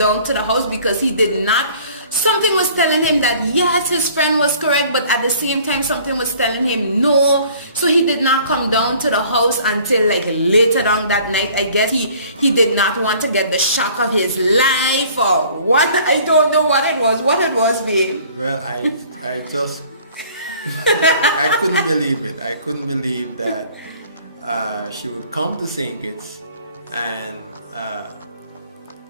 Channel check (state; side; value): inverted; both; correlation -0.52